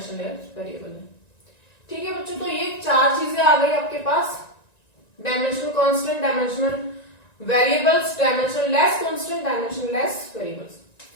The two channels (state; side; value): late; right; 1.9 ms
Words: वेरिएबल है, ठीक है बच्चों। तो ये 4 चीजें आ गई आपके पास, dimensional constant, dimensional variables, dimensionless constant, dimensionless variables.